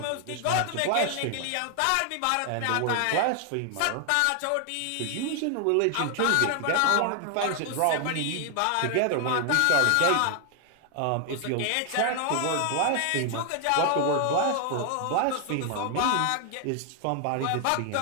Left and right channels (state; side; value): different; both; correlation 0.00